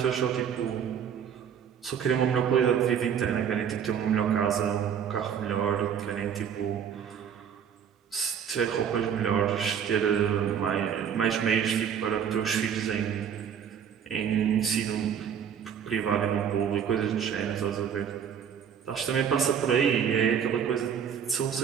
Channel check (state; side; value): quieter; left; 8.1 dB